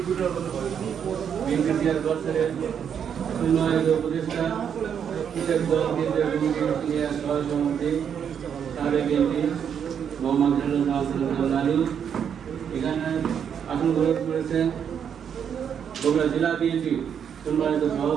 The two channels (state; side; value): quieter; left; 8.0 dB